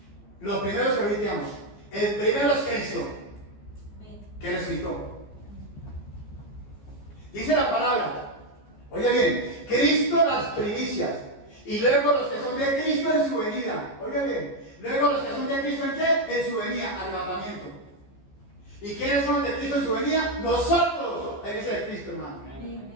los primeros que revisamos. El primero es Cristo, que resucitó. Dice la palabra, oye bien, Cristo las primicias. Y luego los que son de Cristo en su venida. Oiga bien. Luego los que son de Cristo en qué? En su venida, arrebatamiento. ¿Y quiénes son de Cristo en su venida? Nosotros, la iglesia de Cristo, hermano.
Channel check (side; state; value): right; late; 14 ms